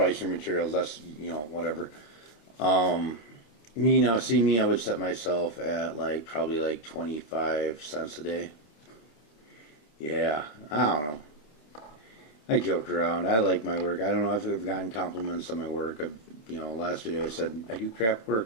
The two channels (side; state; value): right; late; 27 ms